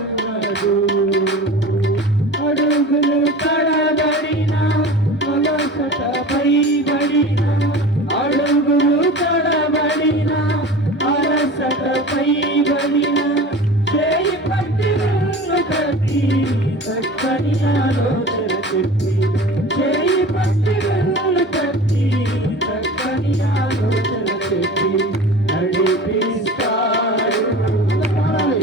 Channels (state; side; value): normal; both; correlation 0.36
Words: అడుగులు తడబడిన అలసటపై బడిన, అడుగులు తడబడిన అలసటపై బడిన, చేయి పట్టి నన్ను కట్టి చక్కని ఆలోచన చెప్పి, చేయి పట్టి నన్ను కట్టి చక్కని ఆలోచన చెప్పి నడిపిస్తాడు.